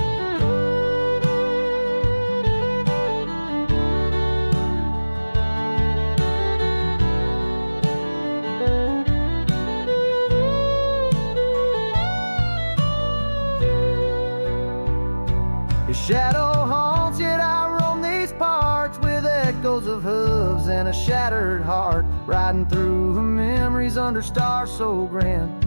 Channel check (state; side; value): inverted; both; correlation -1.00